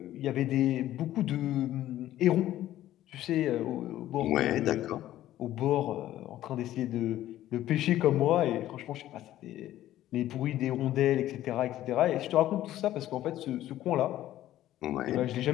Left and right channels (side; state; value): right; quieter; 13.6 dB